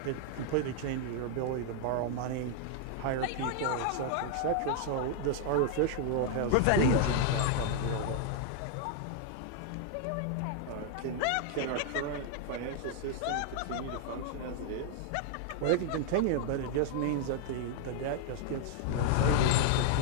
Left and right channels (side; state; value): both; different; correlation 0.00